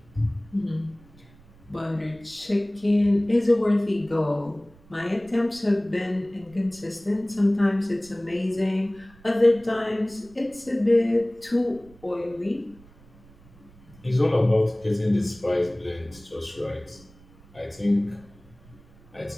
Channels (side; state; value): right; noise; rumble, 25 dB below the sound